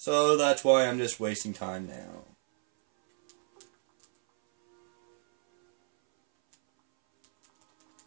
that's why I'm just wasting time now.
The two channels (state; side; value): silent; left; 60 dB below the other